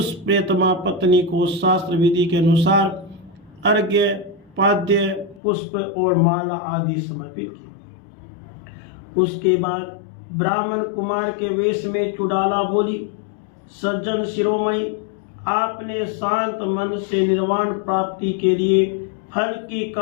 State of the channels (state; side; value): drops out; right; at 5.4 s